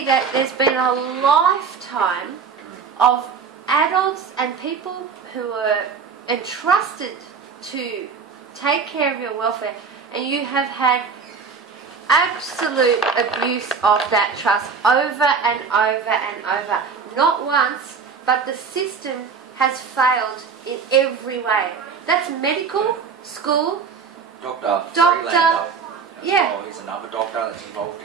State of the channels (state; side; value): quieter; left; 5.7 dB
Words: that there's been a lifetime of adults and people who are entrusted to take care of your welfare, and you have had absolute abuse of that trust over and over and over. Not once, but the system has failed in every way. That's medical, school, Dr. Freelander. Yeah. He's another doctor that's involved